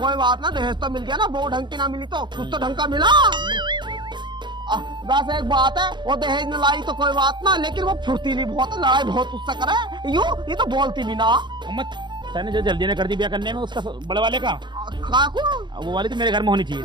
बात ना, दहेज तो मिल गया ना, वो ढंग की ना मिली तो कुछ तो ढंग का मिला। वैसे एक बात है, वो दहेज न लाई तो कोई बात ना, लेकिन वो फुर्तीली बहुत है, लड़ाई बहुत उससे करे। ये तो बोलती भी ना। अम्मा तूने जो जल्दी ने कर दी ब्याह करने में उसका बड़े वाले का, काकू वो वाली तो मेरे घर में होनी चाहिए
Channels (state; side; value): late; left; 0.22 ms